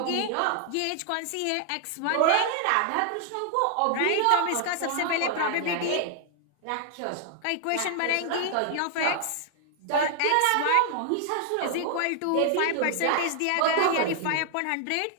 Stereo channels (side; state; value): both; different; correlation 0.00